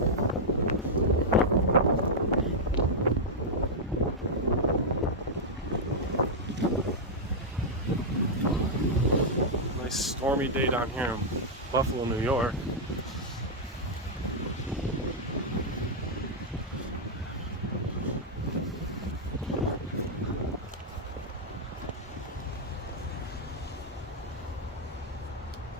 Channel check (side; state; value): both; normal; correlation -0.05